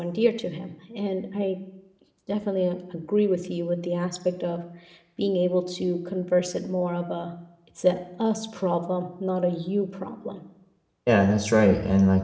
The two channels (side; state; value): both; identical; correlation 1.00